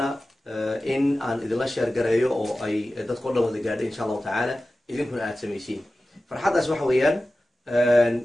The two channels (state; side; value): normal; both; correlation 0.95